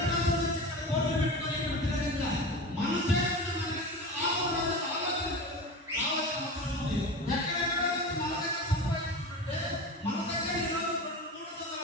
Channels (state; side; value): normal; both; correlation 0.29